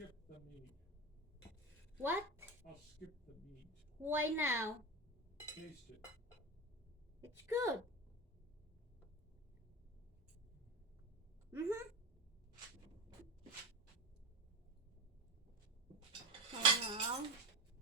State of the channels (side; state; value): both; normal; correlation 0.22